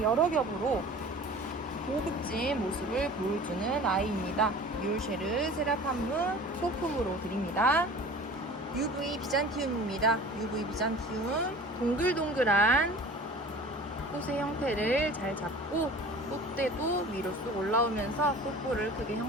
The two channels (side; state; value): both; normal; correlation 0.42